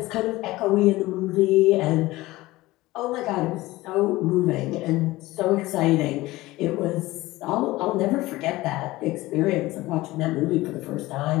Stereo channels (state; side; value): quieter; right; 18.8 dB